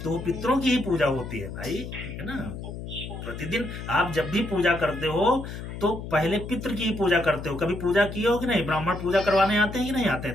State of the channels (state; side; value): noise; left; hum, 9 dB below the sound